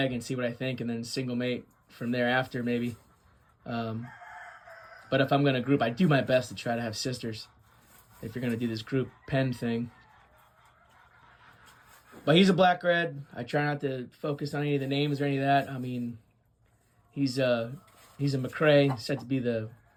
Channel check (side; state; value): both; identical; correlation 1.00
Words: and see what I think and then single mate from there after maybe. But if I'm going to group, I do my best to try to have sisters if you're going to do this group pen thing. But he's a black red. I try not to focus on any of the names or any of that. I mean, he's a McRae, said to be the